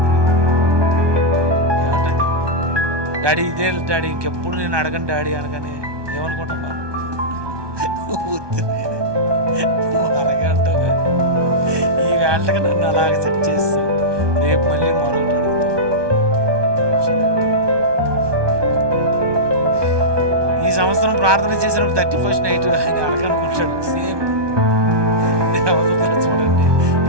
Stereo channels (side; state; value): left; late; 1.2 ms